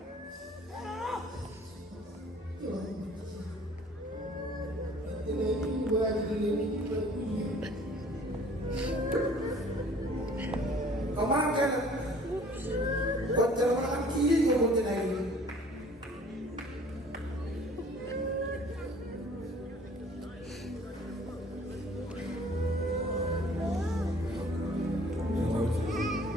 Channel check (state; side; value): normal; both; correlation 0.52